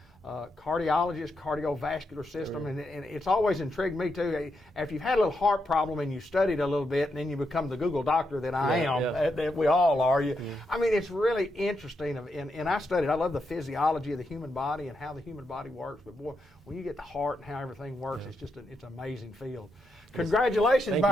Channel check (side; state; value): both; normal; correlation 0.83